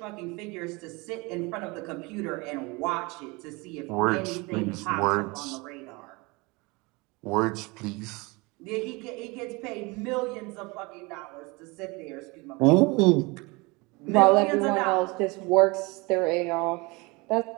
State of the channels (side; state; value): left; quieter; 26.0 dB